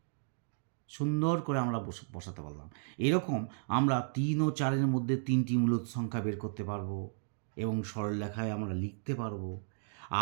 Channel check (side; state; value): left; silent; digital silence